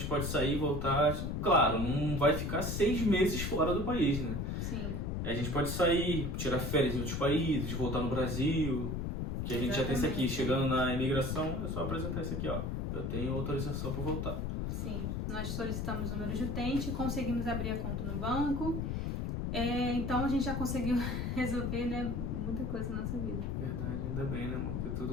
pode sair e voltar. Claro, não vai ficar 6 meses fora do país, né? Sim. A gente pode sair, tirar férias em outros países, voltar no Brasil. Que a gente já tem isso aqui. Chegando na imigração, é só apresentar isso aqui, ó. Eu tenho autorização para voltar. Sim. Nós solicitamos o número de utente, conseguimos abrir a conta no banco. Então a gente já conseguiu resolver, né, muita coisa na nossa vida. Verdade, ainda bem, né, amor? Porque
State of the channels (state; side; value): noise; left; rumble, 1 dB below the sound